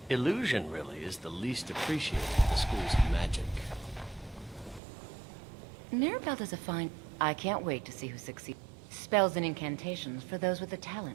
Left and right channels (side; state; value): left; drops out; at 4.8 s